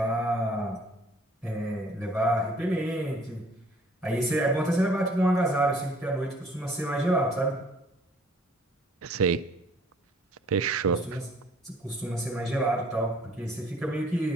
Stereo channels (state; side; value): normal; both; correlation 0.57